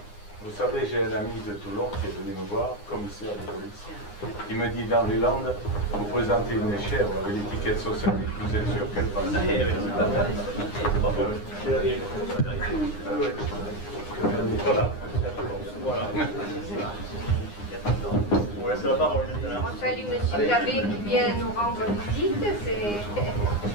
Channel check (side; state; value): right; late; 9.7 ms